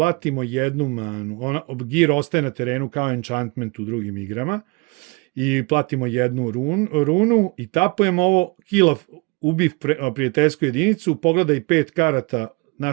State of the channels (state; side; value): quieter; left; 28.5 dB